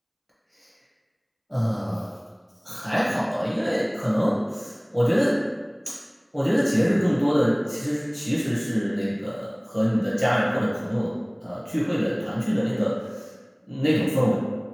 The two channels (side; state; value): both; identical; correlation 1.00